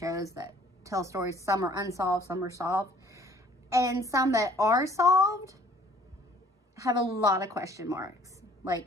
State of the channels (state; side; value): normal; both; correlation 0.56